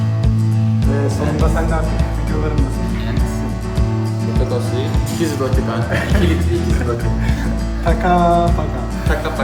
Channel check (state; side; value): identical; both; correlation 1.00